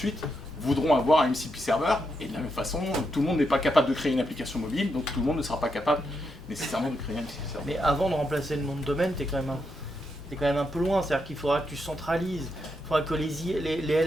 voudront avoir un MCP server, et de la même façon, tout le monde n'est pas capable de créer une application mobile, donc tout le monde ne sera pas capable nécessairement de créer un MCP server. Mais avant de remplacer le nom de domaine, t'es quand même un peu loin, c'est-à-dire qu'il faudra que tu centralises, il faudra que les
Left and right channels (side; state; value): both; normal; correlation 0.82